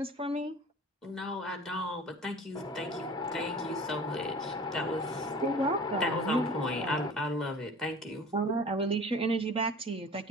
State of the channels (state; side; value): normal; both; correlation 0.42